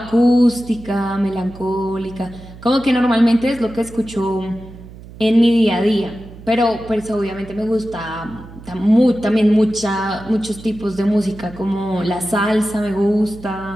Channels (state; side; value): noise; right; hum, 17 dB below the sound